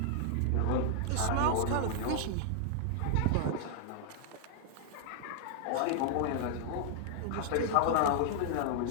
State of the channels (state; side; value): different; both; correlation 0.00